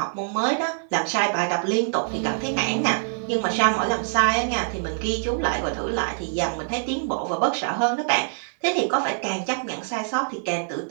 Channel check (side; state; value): left; silent; 55 dB below the other